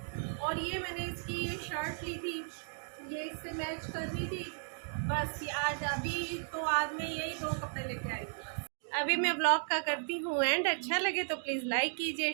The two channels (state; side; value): silent; left; digital silence